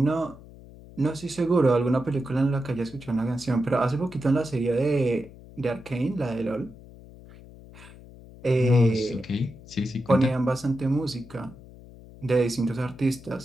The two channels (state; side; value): noise; left; hum, 19 dB below the sound